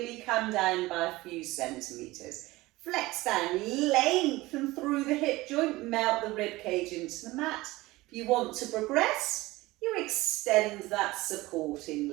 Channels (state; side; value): quieter; left; 19.7 dB